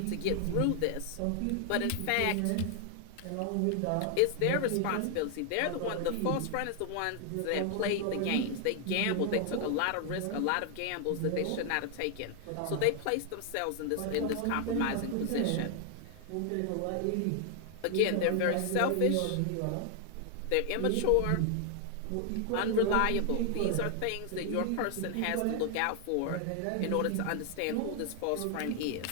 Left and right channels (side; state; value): both; different; correlation 0.00